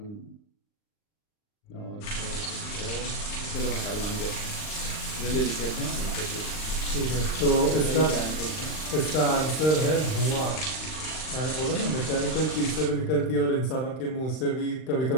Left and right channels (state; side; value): late; right; 39 ms